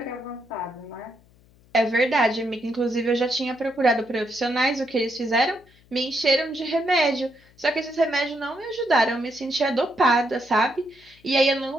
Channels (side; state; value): left; noise; hum, 29 dB below the sound